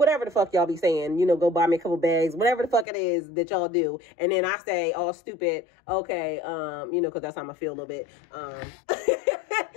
the fuck y'all be saying, you know, go buy me a couple bags, whatever the fuck it is that y'all do. And then I say, all stupid, okay, you know, because that's how I feel a little bit.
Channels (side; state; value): right; drops out; at 2.9 s